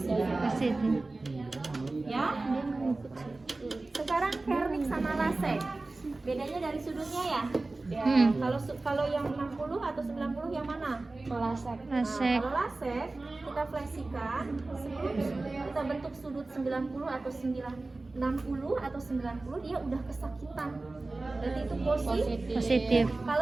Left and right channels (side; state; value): left; quieter; 3.2 dB